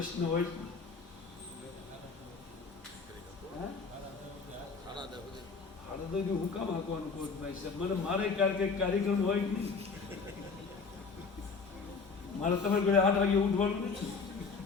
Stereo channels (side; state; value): right; quieter; 4.8 dB